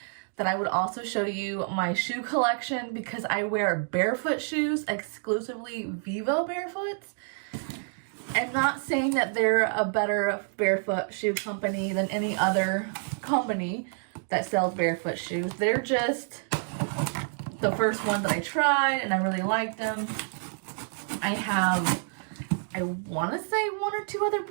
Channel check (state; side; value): silent; left; 56 dB below the other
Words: that I would also show you my shoe collection because I wear Barefoot shoes, exclusively Vivo Barefoots. I'm not saying that they're a better barefoot shoe company than any other company that sells barefoot shoes. They're just the first one that I tried and I really liked them. I want to say one or two other